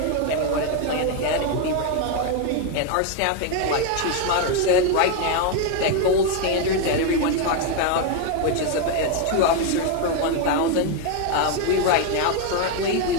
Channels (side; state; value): both; different; correlation 0.01